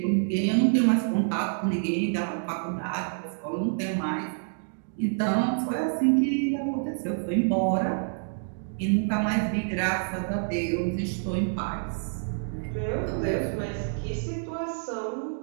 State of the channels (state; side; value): silent; left; digital silence